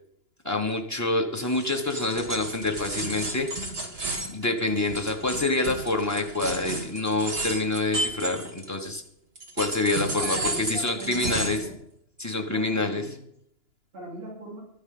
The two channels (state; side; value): late; left; 2.9 ms